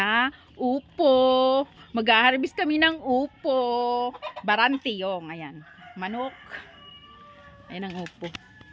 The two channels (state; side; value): identical; both; correlation 1.00